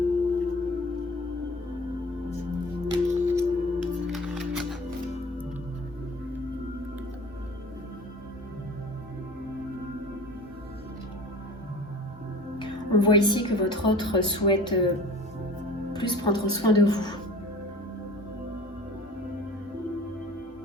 On voit ici que votre autre souhaite plus prendre soin de vous.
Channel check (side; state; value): both; normal; correlation 0.42